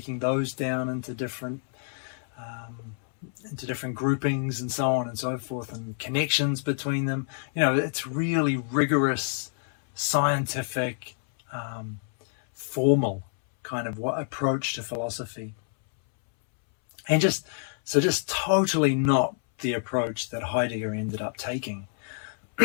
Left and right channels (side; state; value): right; silent; 60 dB below the other